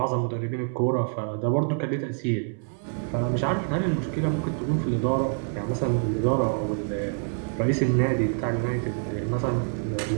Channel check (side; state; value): left; silent; 61 dB below the other